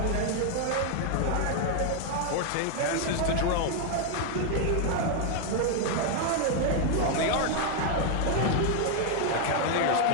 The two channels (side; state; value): both; different; correlation 0.00